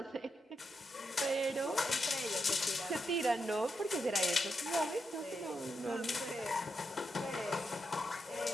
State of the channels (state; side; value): normal; both; correlation 0.84